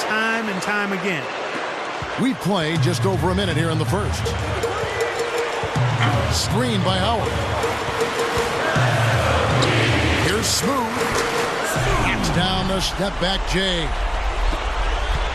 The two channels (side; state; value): both; identical; correlation 1.00